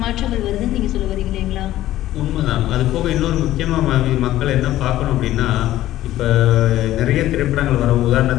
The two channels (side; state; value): right; quieter; 14.3 dB